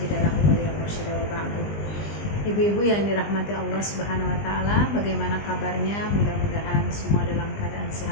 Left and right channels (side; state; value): right; late; 20 ms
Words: lahu waliyyan mursyida wa ba'du. Ibu-ibu yang dirahmati Allah Subhanahu wa taala, bagaimana kabarnya? Mudah-mudahan semua dalam keadaan